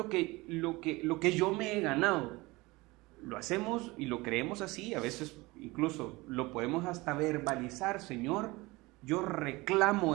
que yo me he ganado. Lo hacemos y lo creemos así, a veces incluso lo podemos hasta verbalizar, Señor, yo reclamo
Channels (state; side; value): quieter; left; 22.3 dB